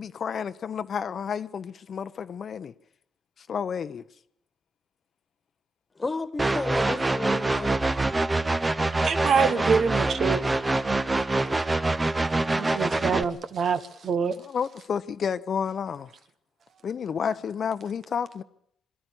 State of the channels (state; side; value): normal; both; correlation 0.87